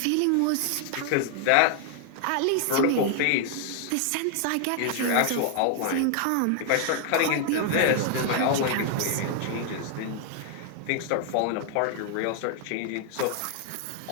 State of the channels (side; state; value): both; different; correlation 0.00